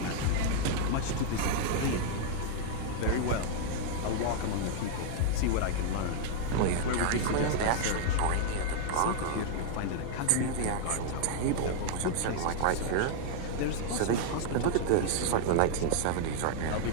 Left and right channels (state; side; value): different; both; correlation -0.01